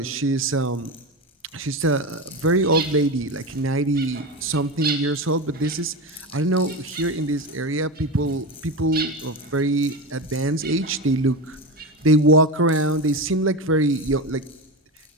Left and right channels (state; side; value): normal; both; correlation 0.21